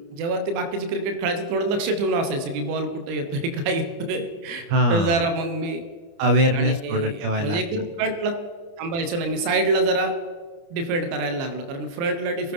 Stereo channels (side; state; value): left; late; 29 ms